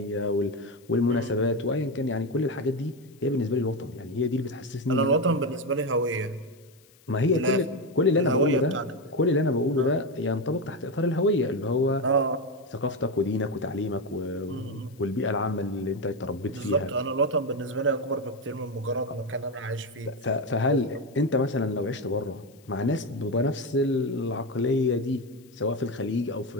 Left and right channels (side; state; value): left; noise; hiss, 29 dB below the sound